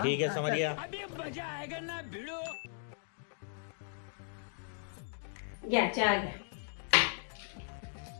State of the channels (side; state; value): right; silent; digital silence